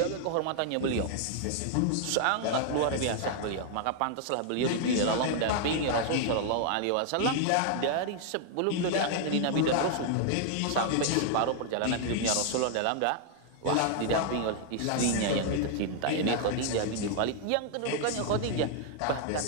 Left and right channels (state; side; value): different; both; correlation 0.00